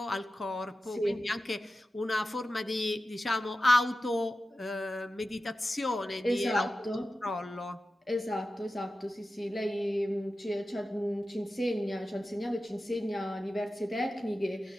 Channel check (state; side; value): normal; both; correlation 0.94